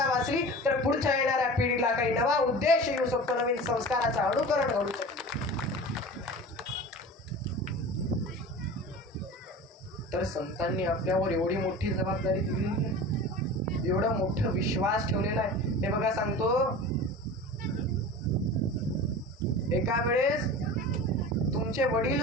वाचली, तर पुढच्या येणाऱ्या पिढीला काही नवा उद्देश येऊ शकतो, नवीन संस्काराचं अनुकरण घडू शकतो. तर संतांनी आपल्यावर एवढी मोठी जबाबदारी दिलेली आहे, एवढा मोठा विश्वास ठेवलेला आहे. हे बघा सांगतो, एका वेळेस तुमचे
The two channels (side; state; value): both; normal; correlation 0.35